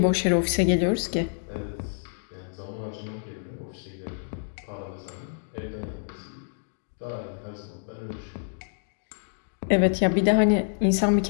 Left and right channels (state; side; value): silent; right; digital silence